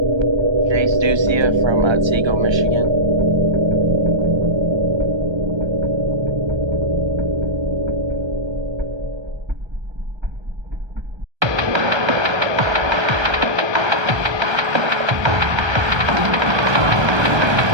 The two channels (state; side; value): late; left; 1.3 ms